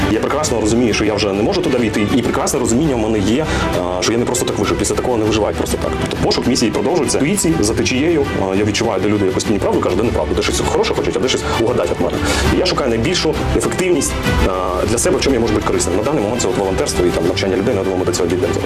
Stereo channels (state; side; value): identical; both; correlation 1.00